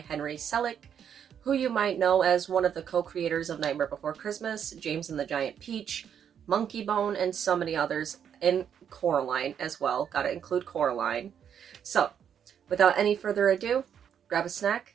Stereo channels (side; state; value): left; quieter; 8.4 dB